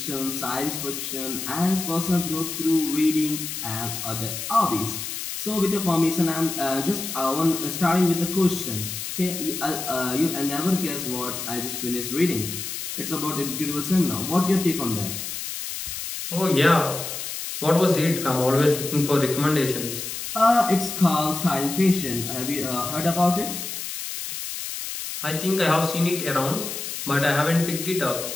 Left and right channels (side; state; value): left; noise; hiss, 6 dB below the sound